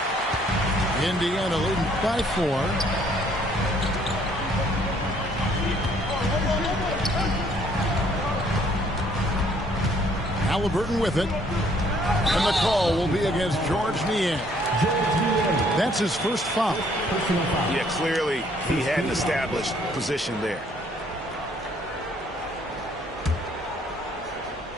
Indiana leading by 4. Halliburton with it. And the call will be against George Niang. That's his first foul. Yeah, clearly he had an established position there.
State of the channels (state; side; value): normal; both; correlation 0.63